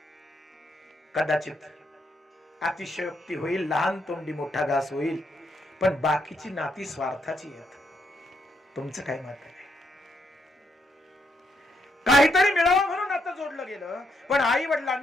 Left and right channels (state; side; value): normal; both; correlation 0.77